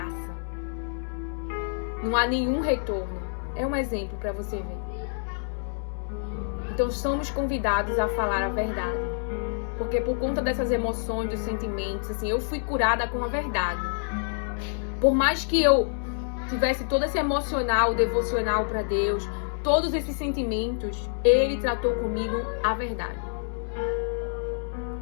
Não há nenhum retorno. É um exemplo para você ver. Então somos convidados a falar a verdade. Porque por conta dessas emoções, dos sentimentos, assim, eu fui curada com a verdade. Por mais que eu tivesse todo esse emocional, devocional para Deus, todos esses sentimentos, Ele tratou comigo a verdade.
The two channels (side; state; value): right; silent; 60 dB below the other